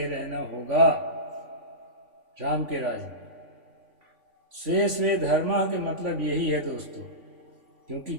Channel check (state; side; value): late; left; 3.5 ms